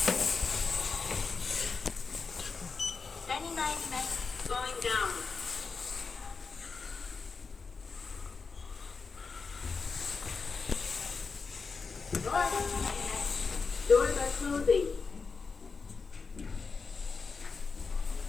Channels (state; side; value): quieter; right; 4.8 dB